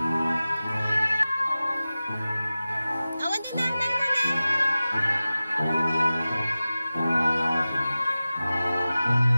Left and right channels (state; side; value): inverted; both; correlation -0.96